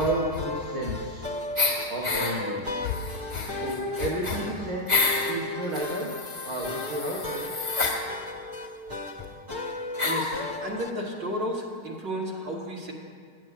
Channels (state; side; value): late; left; 6.5 ms